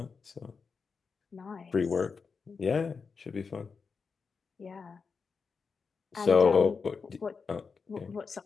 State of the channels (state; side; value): quieter; right; 5.2 dB